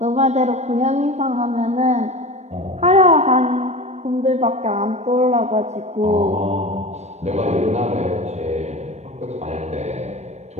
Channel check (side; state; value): left; late; 0.32 ms